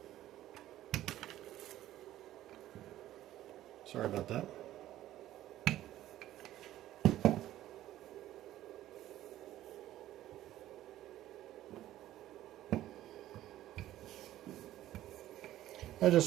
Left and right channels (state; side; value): quieter; left; 13.8 dB